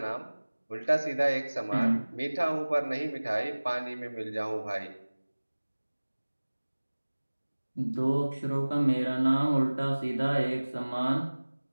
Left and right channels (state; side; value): inverted; both; correlation -1.00